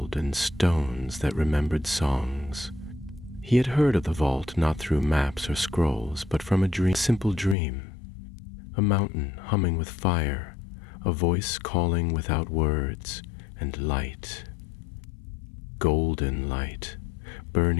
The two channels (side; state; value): right; drops out; at 7.6 s